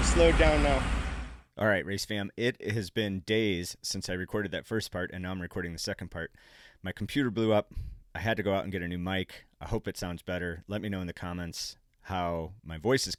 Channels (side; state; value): both; identical; correlation 1.00